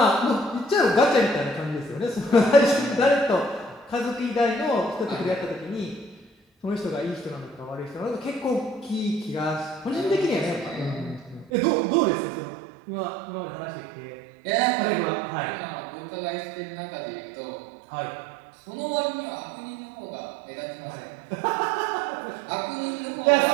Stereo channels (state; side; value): drops out; left; at 11.5 s